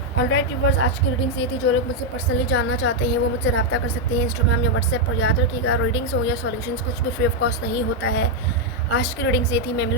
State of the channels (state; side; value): normal; both; correlation 0.00